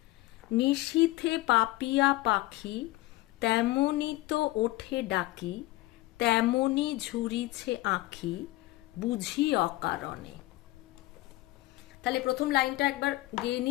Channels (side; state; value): right; quieter; 18.3 dB